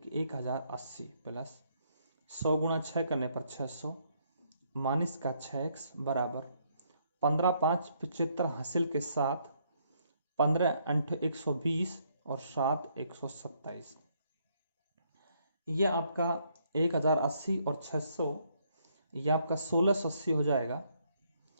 1080 प्लस 100 गुणा 6 करने पर 600 माइनस का 6x बराबर 15 5 75 हासिल के साथ 15 8 120 और 7 127। ये आपका 1080 और 600, ये आपका 1680 हो जाएगा।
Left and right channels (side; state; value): both; inverted; correlation -0.71